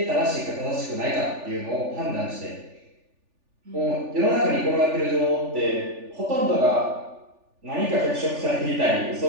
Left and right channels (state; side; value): late; left; 3.4 ms